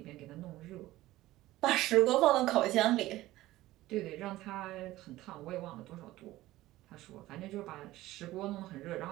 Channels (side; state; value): left; quieter; 16.6 dB